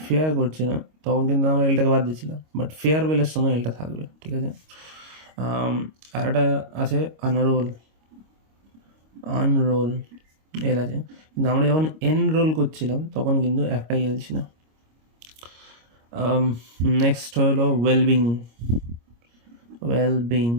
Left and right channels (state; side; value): late; left; 25 ms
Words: করছিলাম তখন কিন্তু আমরা এলটাকে বাদ দিয়েছিলাম, বাট ফেয়ারওয়েলের সময় এলটা থাকবে, ঠিক আছে। আর একটা আছে আনরোল, আনরোল এল আছে, কিন্তু আমরা যখন এনরোল করছিলাম তখন কিন্তু একটাই এল ছিল। নেক্সট হলো ওয়েলবিং, ওয়েলবিং।